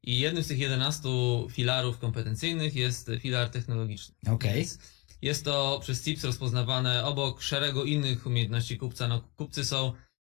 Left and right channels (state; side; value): quieter; right; 23.9 dB